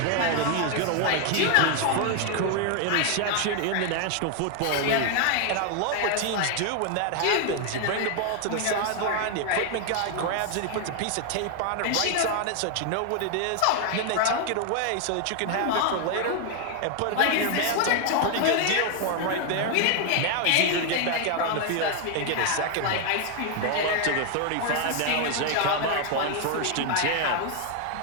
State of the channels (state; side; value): different; both; correlation 0.00